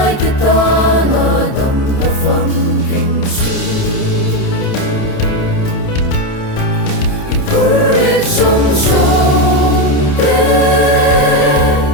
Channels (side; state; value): right; late; 28 ms